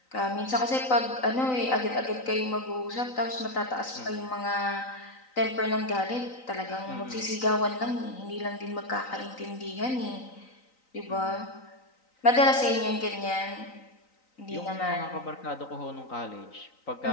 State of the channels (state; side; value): late; right; 3.9 ms